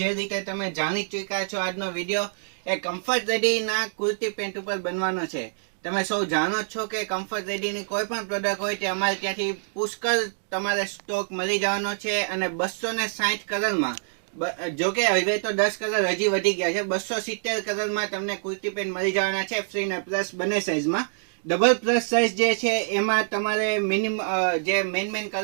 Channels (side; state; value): left; silent; digital silence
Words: રીતે તમે જાણી ચૂક્યા છો, આજનો વિડીયો એ કમ્ફર્ટ રેડીના કુર્તી પેન્ટ ઉપર બનવાનો છે. તમે સૌ જાણો જ છો કે કમ્ફર્ટ રેડીની કોઈ પણ પ્રોડક્ટ હોય તે અમારે ત્યાંથી પુષ્કળ તમારે સ્ટોક મળી જવાનો છે. અને 260 કલરમાં, જોકે હવે તો 10 કલર હજી વધી ગયા છે, 270 કલરમાં તમને કુર્તી પેન્ટ મળી જવાના છે, ફ્રી ને પ્લસ બંને સાઇઝમાં. ડબલ પ્લસ સાઇઝ જે છે એમાં તમારે મિનિમમ જે મેન